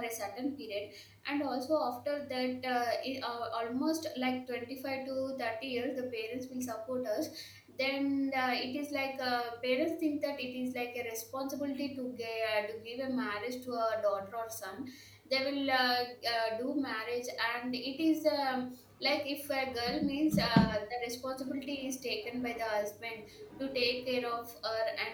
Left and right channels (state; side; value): identical; both; correlation 1.00